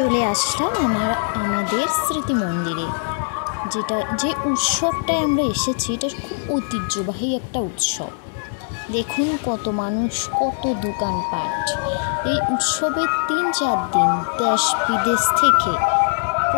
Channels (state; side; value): silent; right; 57 dB below the other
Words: আসলাম আমাদের স্মৃতি মন্দিরে। যে উৎসবটায় আমরা এসেছি, এটা খুব ঐতিহ্যবাহী একটা উৎসব। দেখুন কত মানুষ, কত দোকানপাট। এই উৎসবের 3-4 দিন দেশ বিদেশ থেকে